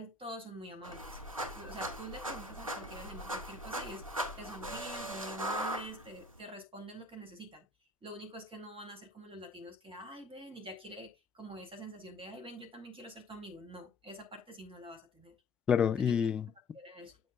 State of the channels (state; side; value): quieter; right; 3.6 dB